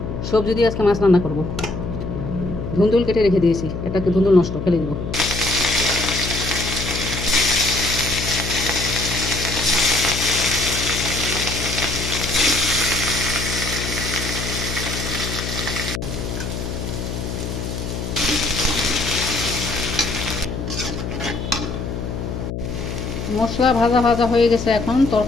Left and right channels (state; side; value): noise; left; hum, 5 dB below the sound